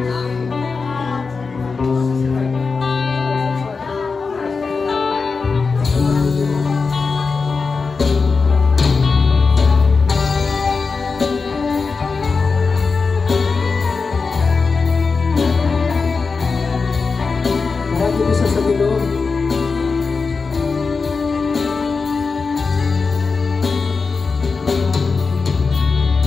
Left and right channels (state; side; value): quieter; right; 4.6 dB